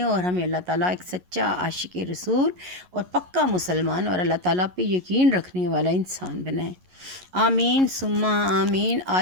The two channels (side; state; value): left; late; 11 ms